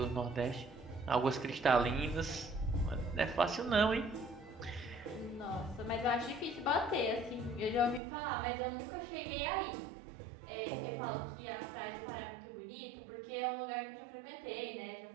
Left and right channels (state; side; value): drops out; left; at 8.0 s